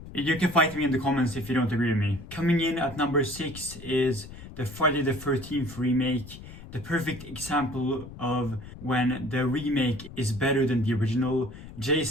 You can fight me in the comments if you don't agree with me. Coming in at number 6 is the Friday the 13th remake. The perfect example of when the remake is better than the original.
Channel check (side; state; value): left; noise; rumble, 15 dB below the sound